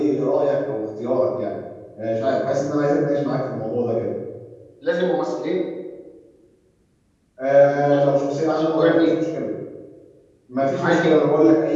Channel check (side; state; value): both; identical; correlation 1.00